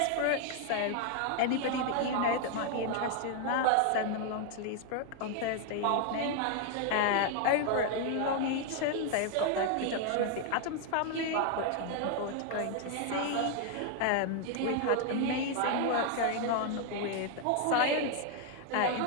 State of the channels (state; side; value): different; both; correlation 0.00